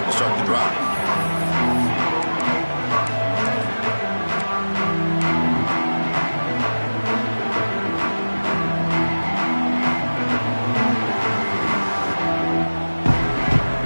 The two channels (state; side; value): inverted; both; correlation -1.00